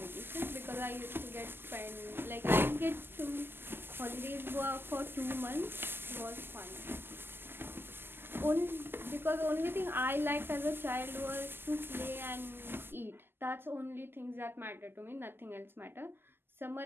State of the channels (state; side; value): late; left; 0.10 ms